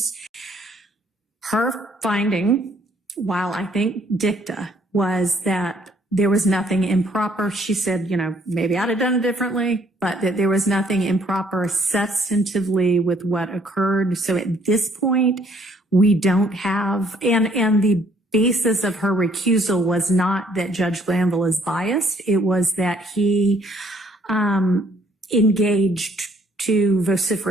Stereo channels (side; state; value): both; normal; correlation 0.64